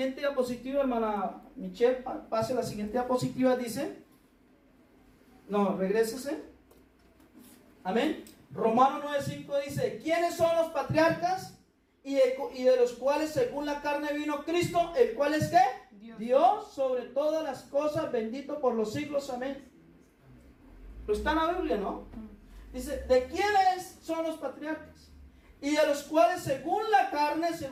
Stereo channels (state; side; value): identical; both; correlation 1.00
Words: diapositiva, hermana Michelle, pase la siguiente diapositiva, dice. No, regrésese. Amén. Romanos 9:5 dice, ¿quiénes son los patriarcas? Y de los cuales según la carne vino Cristo, el cual es ¿qué? Dios sobre todas las cosas, bendito por los siglos, amén. Pero está en la Biblia, ¿no? Dice, ¿de quiénes son los patriarcas? Y de los cuales según la carne,